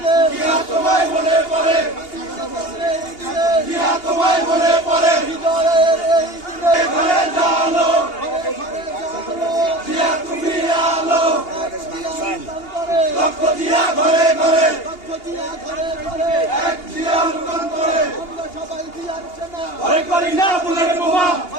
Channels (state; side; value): late; right; 2.8 ms